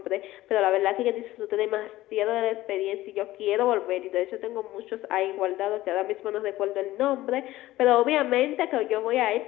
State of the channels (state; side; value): quieter; right; 16.3 dB